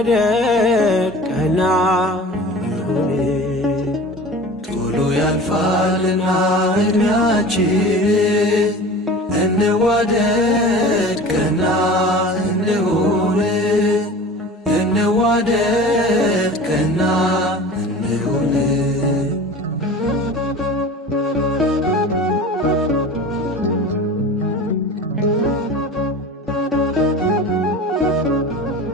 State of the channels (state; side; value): normal; both; correlation 0.38